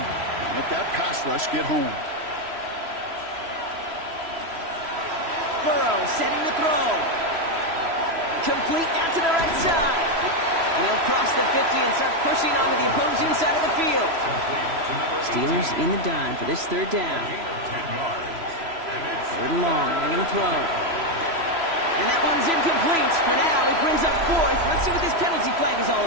let that pass rush get home. Burrow setting the throw. Complete out to the right side. And he'll cross the 50 and start pushing onto the opposing side of the field. Steelers in the dime for this third down. Third and long. They're going to throw. And that one's incomplete. For now, he brings up fourth. Let's see what this penalty flag is all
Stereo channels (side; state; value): left; late; 3.0 ms